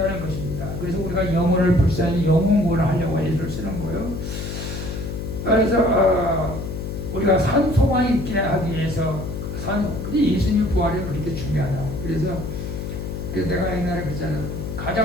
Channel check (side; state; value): left; noise; hum, 6 dB below the sound